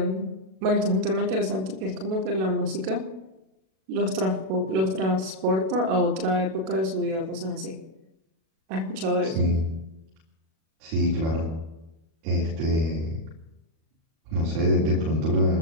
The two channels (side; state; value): left; late; 37 ms